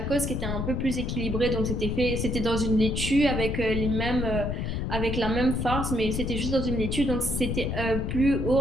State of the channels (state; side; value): noise; left; rumble, 2 dB below the sound